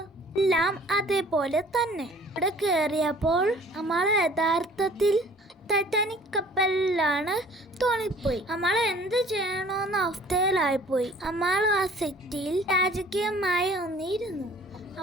എല്ലാം അതേപോലെ തന്നെ. ഇവിടെ കയറിയപ്പോൾ നമ്മൾ യഥാർത്ഥത്തിൽ ടൈറ്റാനിക് കപ്പലിലാണ് തോന്നിപ്പോയി. നമ്മൾ എന്ത് ചെയ്യണമെന്ന അവസ്ഥയിലായിപ്പോയി. നമ്മൾ ആ സെറ്റിൽ രാജകീയമായി ഒന്നിരുന്നു.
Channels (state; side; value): normal; both; correlation 0.52